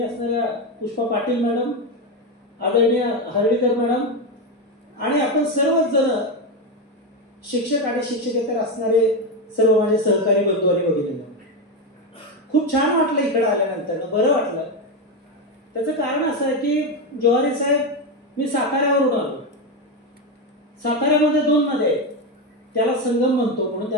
असणाऱ्या पुष्पा पाटील मॅडम, आदरणीय हर्डीकर मॅडम, आणि आपण सर्वच जण शिक्षक आणि शिक्षकेतर असणारे सर्व माझे सहकारी बंधू आणि भगिनी, खूप छान वाटलं इकडे आल्यानंतर, बरं वाटलं. त्याचं कारण असं आहे की जोहारी साहेब, मी साताऱ्यावरून आलो. साताऱ्यामध्ये 2 नद्या आहेत, त्याला संगम म्हणतो, म्हणून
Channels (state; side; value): normal; both; correlation 0.11